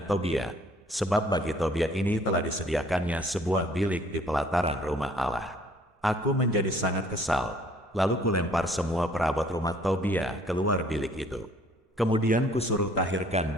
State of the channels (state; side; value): normal; both; correlation 0.58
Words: Tobia, sebab bagi Tobia ini telah disediakannya sebuah bilik di pelataran rumah Allah. Aku menjadi sangat kesal. Lalu kulempar semua perabot rumah Tobia keluar bilik itu. Kemudian kusuruh tahirkan